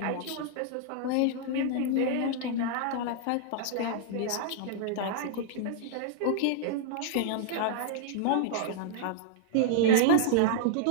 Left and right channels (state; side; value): different; both; correlation -0.01